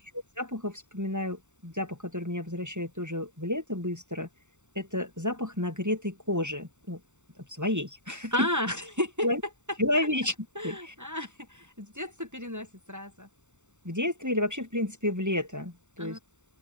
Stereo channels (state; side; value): late; left; 0.84 ms